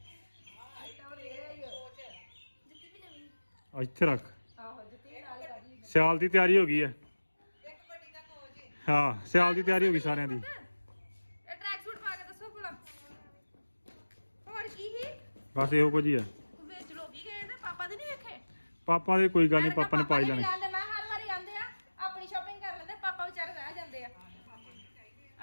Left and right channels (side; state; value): both; inverted; correlation -1.00